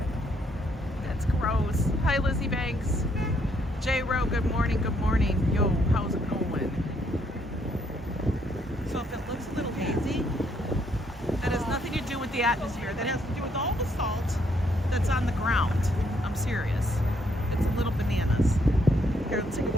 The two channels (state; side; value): normal; both; correlation 0.71